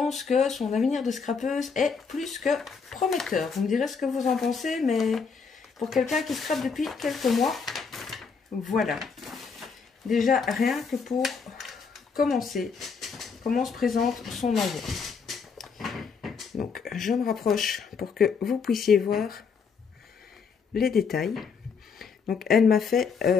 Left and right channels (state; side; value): quieter; right; 5.6 dB